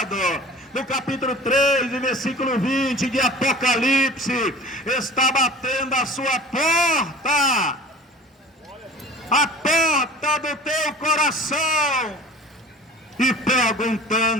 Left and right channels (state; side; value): normal; both; correlation 0.42